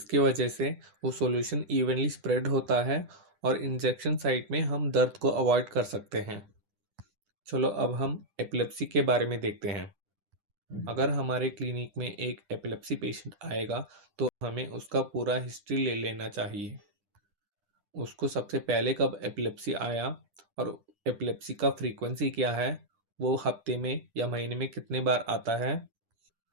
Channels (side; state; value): left; late; 10 ms